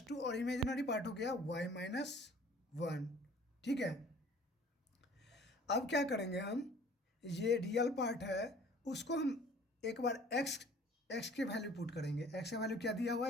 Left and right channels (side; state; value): both; normal; correlation 0.51